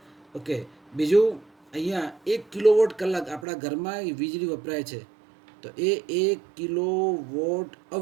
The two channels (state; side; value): drops out; left; at 3.5 s